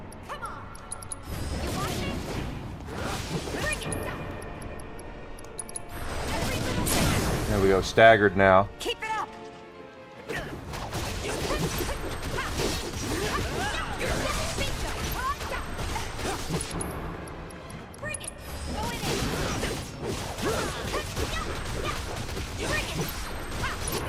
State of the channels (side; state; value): both; identical; correlation 1.00